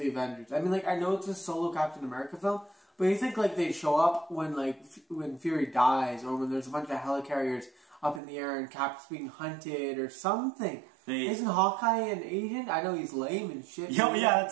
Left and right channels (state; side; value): drops out; left; at 8.2 s